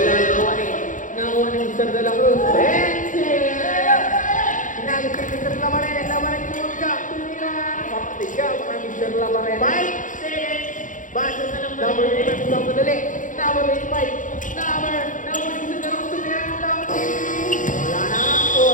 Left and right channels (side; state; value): right; late; 0.37 ms